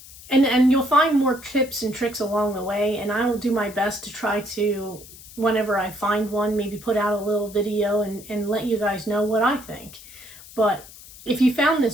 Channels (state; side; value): noise; left; hiss, 18 dB below the sound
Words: you'll find more tips and tricks along the way, and I will do my best to try to, whenever I find one, maybe put out a little video and let you guys know what I think. But if you found